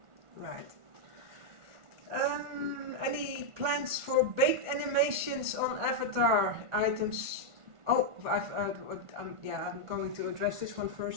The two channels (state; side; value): late; left; 1.4 ms